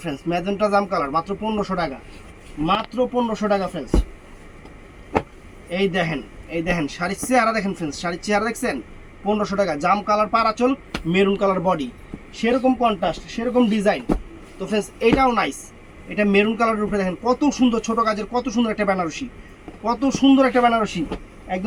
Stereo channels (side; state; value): both; identical; correlation 1.00